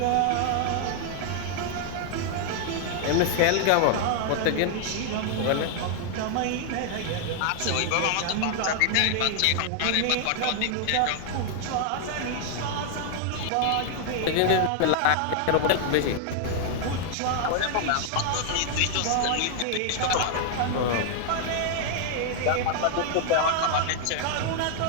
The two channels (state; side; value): different; both; correlation 0.00